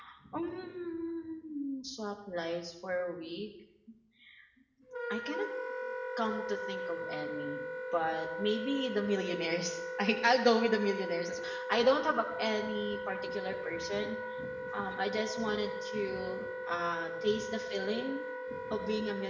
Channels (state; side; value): identical; both; correlation 1.00